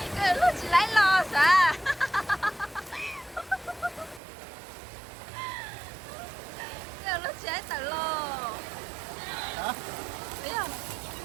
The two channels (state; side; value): drops out; left; at 4.2 s